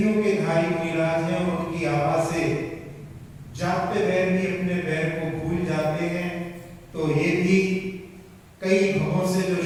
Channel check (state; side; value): identical; both; correlation 1.00